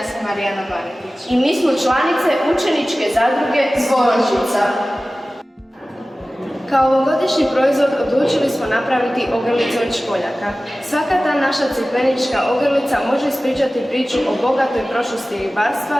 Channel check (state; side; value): normal; both; correlation 0.96